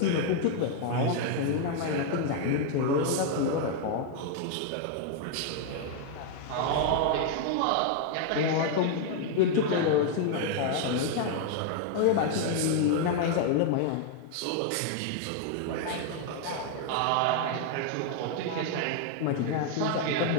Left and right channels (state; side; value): different; both; correlation 0.00